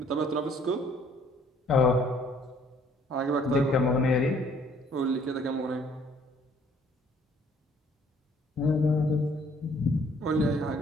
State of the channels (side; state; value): both; normal; correlation 0.61